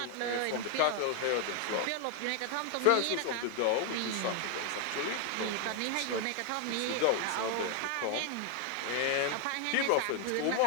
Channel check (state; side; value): different; both; correlation 0.00